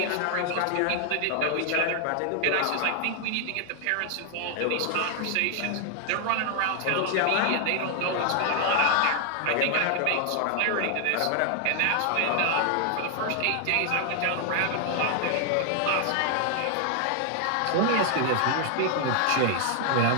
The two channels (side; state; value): both; different; correlation 0.00